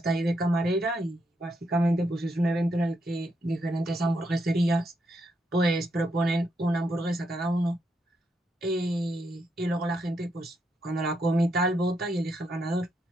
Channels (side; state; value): both; normal; correlation 0.79